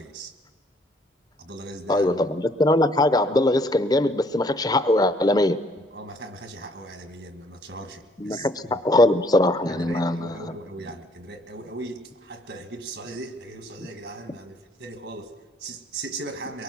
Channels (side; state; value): both; normal; correlation 0.63